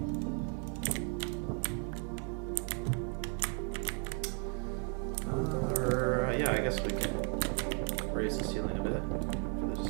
Yeah, I guess we can raise the ceiling a bit for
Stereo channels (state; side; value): quieter; left; 36.8 dB